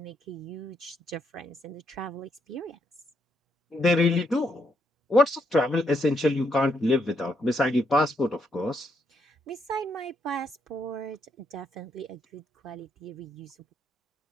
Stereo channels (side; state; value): both; normal; correlation 0.76